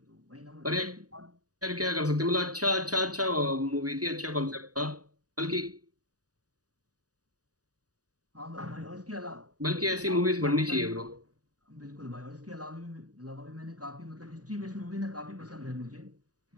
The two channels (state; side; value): late; left; 0.67 ms